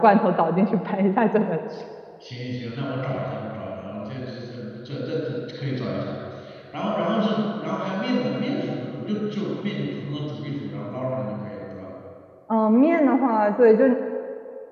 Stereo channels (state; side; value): identical; both; correlation 1.00